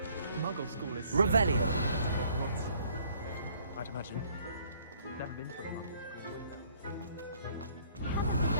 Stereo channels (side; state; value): both; inverted; correlation -0.61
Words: Muggle school is Revelio. Hogwarts, I'd imagine. Never been to a Muggle school.